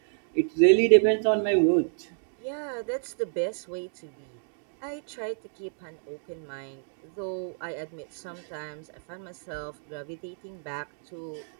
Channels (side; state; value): left; silent; 58 dB below the other